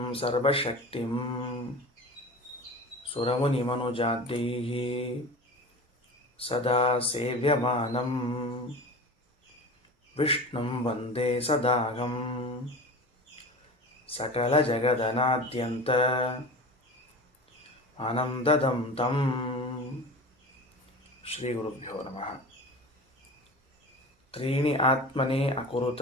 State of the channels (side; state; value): both; normal; correlation 0.33